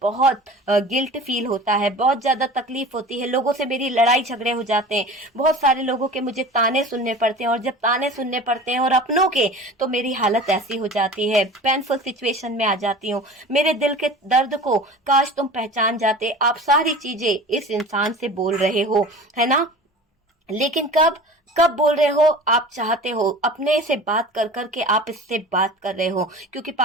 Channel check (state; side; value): normal; both; correlation 0.38